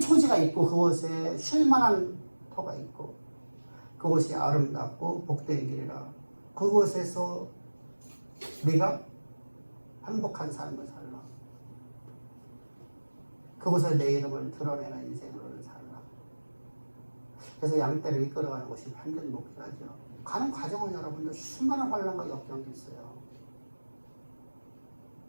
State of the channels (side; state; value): both; inverted; correlation -1.00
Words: 있고 그곳에 쉴만한 터가 있고 그곳이 아름답고 복된 길이라 그곳에서 우리가 행복한 삶을 살라. 그곳에 내 이름을 드러내는 인생으로 살라. 그래서 양떼를 이끌어가는 것이 완전 목표죠. 가는 과정은 여러분들 수많은 환란과 역경이 있어요.